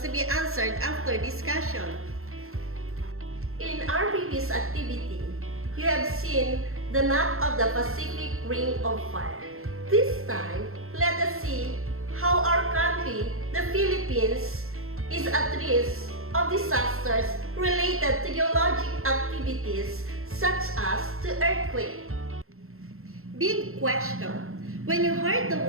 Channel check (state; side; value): late; left; 0.62 ms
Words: to be answered after discussion. In our previous activity, you have seen the map of the Pacific Ring of Fire. This time, let us see how our country, the Philippines, is at risk of disasters related to geologic activities such as the earthquake. Big question. When you heard